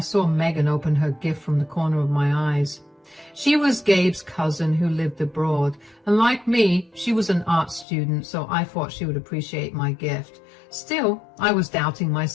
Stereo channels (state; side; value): drops out; right; at 7.9 s